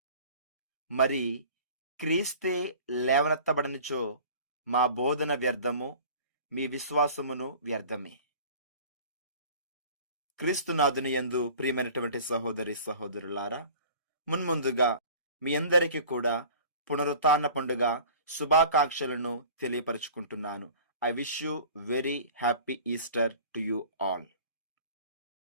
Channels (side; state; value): both; inverted; correlation -0.45